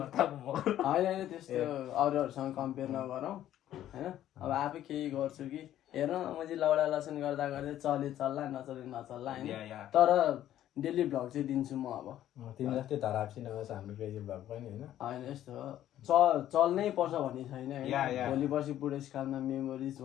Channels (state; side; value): quieter; right; 12.2 dB